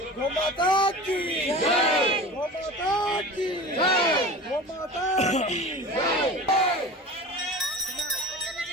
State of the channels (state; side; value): normal; both; correlation 0.35